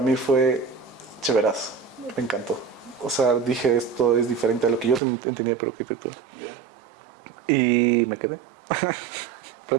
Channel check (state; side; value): drops out; left; at 5.0 s